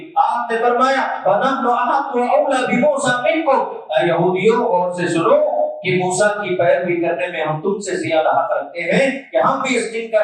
آپ نے فرمایا فَنَحْنُ أَحَقُّ وَأَوْلَىٰ بِمُوسَىٰ مِنكُمْ، اے یہودیوں غور سے سنو کہ موسیٰ کی پیروی کرنے میں ہم تم سے زیادہ حق رکھتے ہیں کہ ہم بھی اس دن کا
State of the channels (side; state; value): both; identical; correlation 1.00